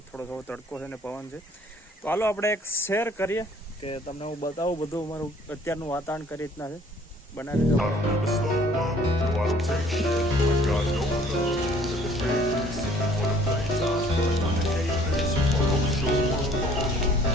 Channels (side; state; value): both; normal; correlation 0.56